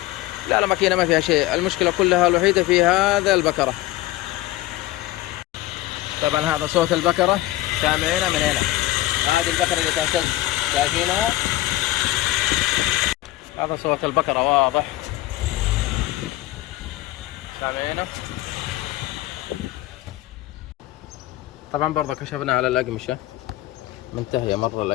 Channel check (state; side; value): quieter; right; 16.9 dB